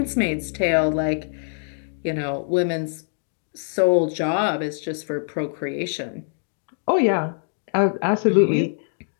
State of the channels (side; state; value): right; silent; digital silence